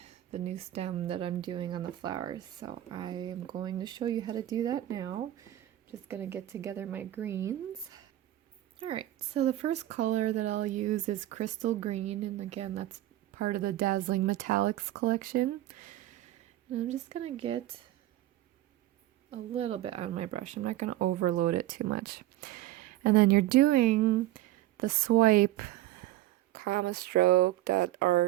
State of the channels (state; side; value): quieter; left; 14.8 dB